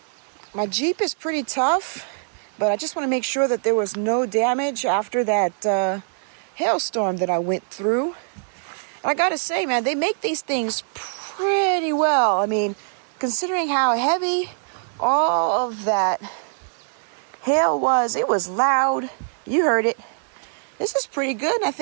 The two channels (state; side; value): silent; left; digital silence